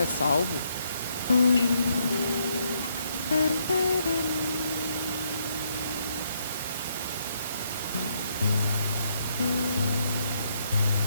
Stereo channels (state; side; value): inverted; both; correlation -0.75